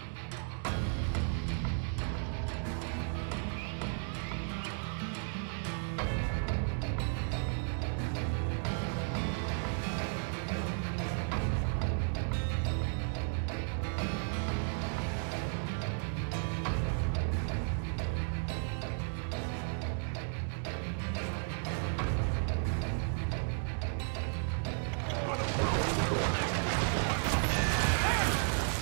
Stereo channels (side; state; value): left; silent; 55 dB below the other